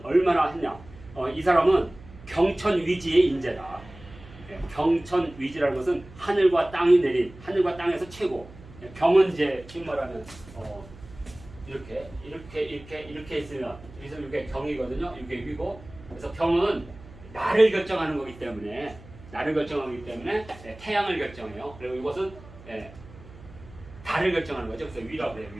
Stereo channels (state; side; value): noise; right; hum, 19 dB below the sound